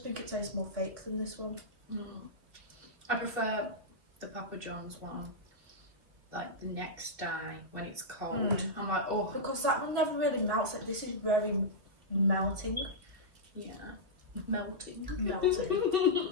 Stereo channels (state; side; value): late; left; 2.6 ms